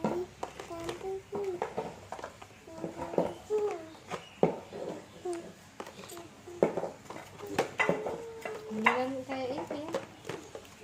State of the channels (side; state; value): both; identical; correlation 1.00